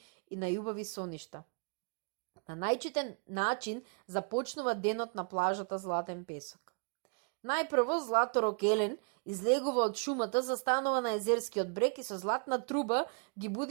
и најубави соништа. На најчитен начин започнува денот на плажата Златен песок. Најпрво Златорок Елен излегува од шумата, застанува на езерскиот брег и со златна труба ги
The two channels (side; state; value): left; quieter; 38.4 dB